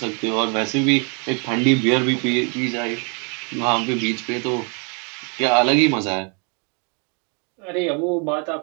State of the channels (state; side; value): quieter; left; 35.9 dB